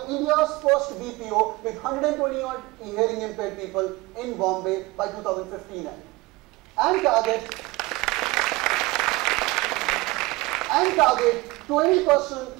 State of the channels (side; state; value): left; quieter; 22.0 dB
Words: India's first BPO with 120 odd hearing impaired people in Bombay by 2015 and target